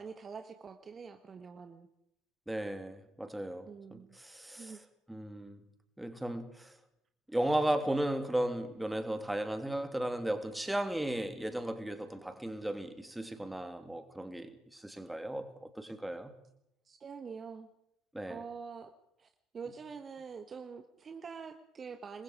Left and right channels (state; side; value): normal; both; correlation 0.95